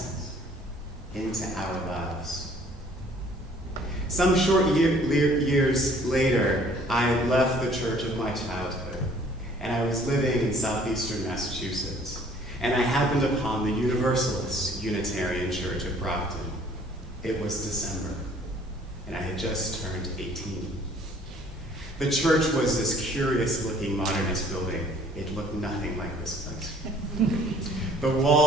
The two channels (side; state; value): both; normal; correlation 0.56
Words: into our lives. Some short years later, I left the church of my childhood, and I was living in southeastern Massachusetts, and I happened upon the Universalist Unitarian Church of Grafton. It was December, and I had just turned 18. The church was this curious-looking modernist building. It looked nothing like this place. The